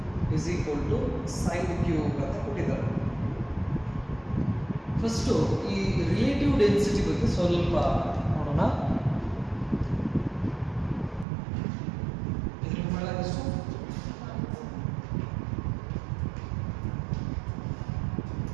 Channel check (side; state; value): left; drops out; at 11.2 s